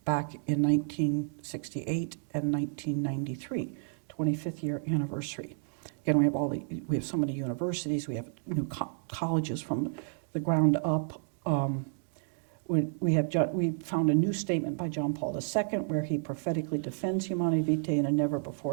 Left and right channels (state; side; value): silent; left; digital silence